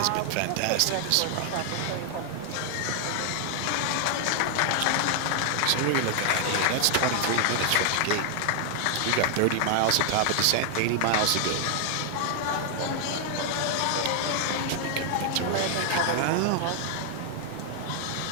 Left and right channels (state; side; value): different; both; correlation 0.00